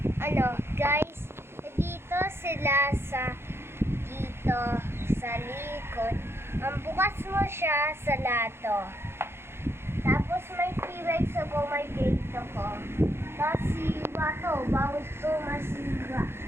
Guys, dito sila dito sa likod. Ang bukas mo siya sa lato. Tapos may T-Rex ako, may gate ako. Tapos si Wato, bawal ko masiga.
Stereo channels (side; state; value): left; late; 0.12 ms